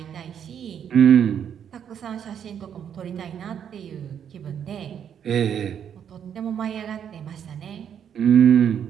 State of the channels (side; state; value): left; quieter; 8.6 dB